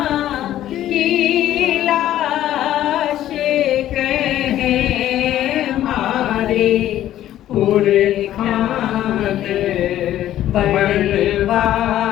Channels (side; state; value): right; quieter; 12.7 dB